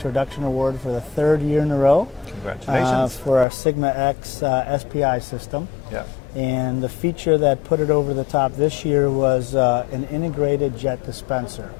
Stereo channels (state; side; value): drops out; right; at 3.5 s